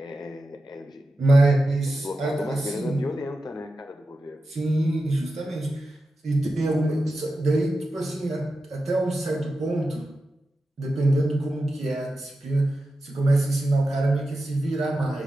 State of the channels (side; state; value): both; normal; correlation 0.91